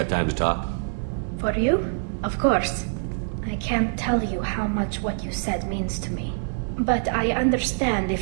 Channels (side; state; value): left; silent; digital silence